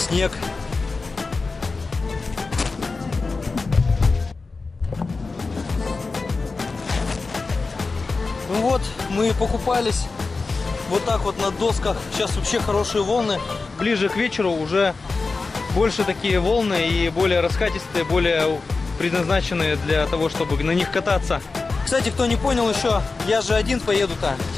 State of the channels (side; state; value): right; quieter; 4.0 dB